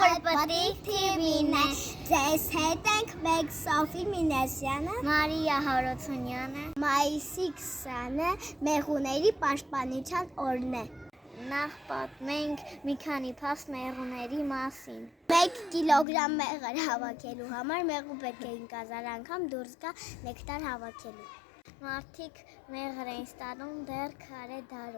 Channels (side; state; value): right; drops out; at 16.1 s